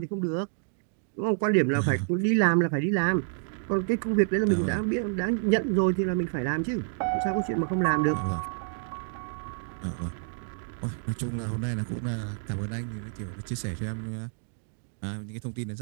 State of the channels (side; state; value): left; silent; digital silence